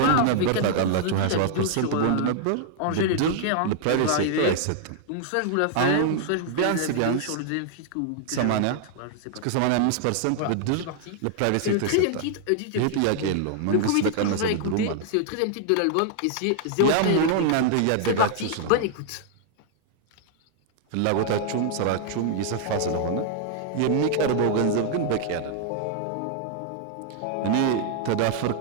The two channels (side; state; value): both; different; correlation 0.00